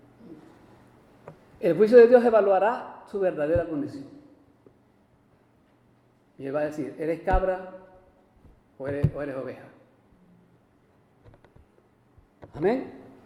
El juicio de Dios evaluará su verdadera condición. Y Él va a decir: ¿eres cabra o eres oveja? Amén.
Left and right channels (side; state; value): both; identical; correlation 1.00